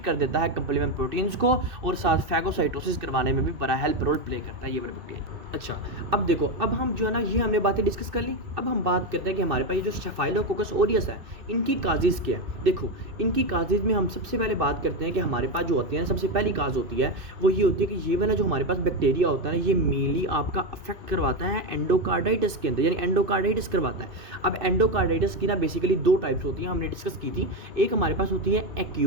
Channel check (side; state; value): left; late; 2.6 ms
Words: कर देता है कंप्लीमेंट प्रोटीन्स को और साथ फैगोसाइटोसिस करवाने में भी बड़ा हेल्प रोल प्ले करता है ये वाला बैक्टीरिया। अच्छा, अब देखो, अब हम जो है ना ये हमने बातें डिस्कस कर ली। अब हम बात करते हैं कि हमारे पास ये जो स्टेफाइलोकोकस ऑरियस है इनकी काजेज़ क्या है। देखो इनकी काजेज़ में हम सबसे पहले बात करते हैं कि हमारे पास जो होती है ना सबसे पहली काज होती है वो ये होती है कि ये वाला जो हमारे पास बैक्टीरिया होता है ना ये मेनली आपका अफेक्ट करवाता है एंडोकार्डाइटिस के अंदर, यानी एंडोकार्डाइटिस करवाता है। अब एंडोकार्डाइटिस की ना बेसिकली 2 टाइप्स होती हैं, हमने डिस्कस की थी। एक हमारे पास होती है